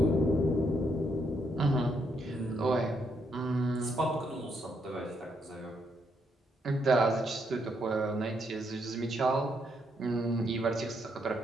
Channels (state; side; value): normal; both; correlation 0.75